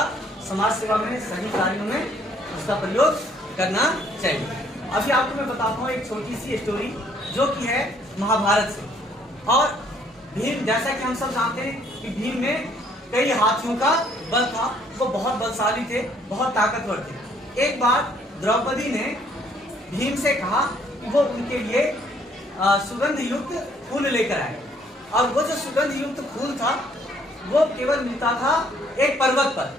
समाज सेवा में, सही कार्यों में उसका प्रयोग करना चाहिए। अभी आपको मैं बताता हूँ एक छोटी सी स्टोरी जो कि है महाभारत से। और भीम, जैसा कि हम सब जानते हैं कि भीम में कई हाथियों का बल था, वो बहुत बलशाली थे, बहुत ताकतवर थे। एक बार द्रौपदी ने भीम से कहा कि वो उनके लिए सुगंध युक्त फूल लेकर आए। और वो जो सुगंध युक्त फूल था वो केवल मिलता था एक पर्वत पर,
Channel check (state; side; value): normal; both; correlation 0.64